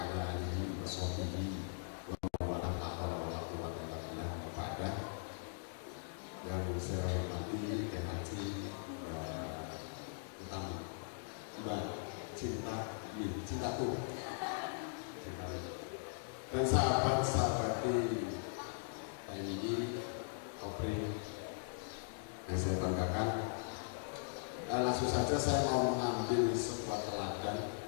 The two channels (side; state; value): right; silent; digital silence